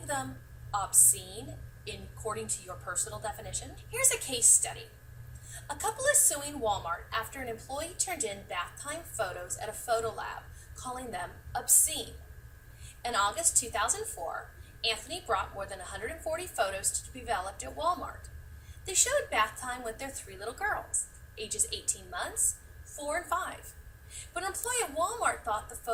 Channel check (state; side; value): identical; both; correlation 1.00